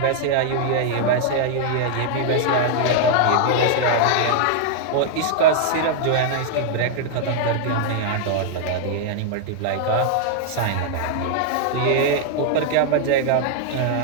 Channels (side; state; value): both; different; correlation -0.01